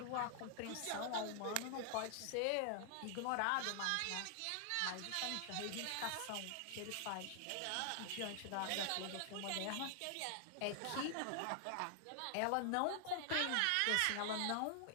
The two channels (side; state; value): both; different; correlation 0.00